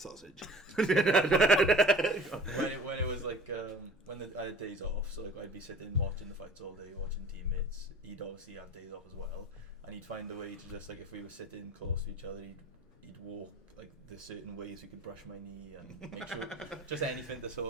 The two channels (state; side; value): normal; both; correlation 0.44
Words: when it was like when I had days off, so like I'd be sitting watching the fights all day, watching teammates. He'd obviously have days off as well, and he'd find a way to just like, if we were sitting close to each other, he'd walk like the certain ways we could brush my knee and make sure just anything to sort